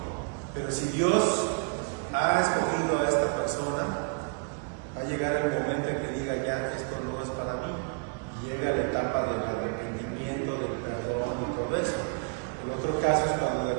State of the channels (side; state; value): left; quieter; 35.3 dB